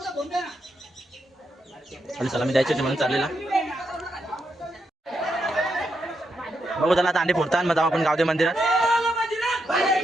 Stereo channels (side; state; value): both; normal; correlation 0.82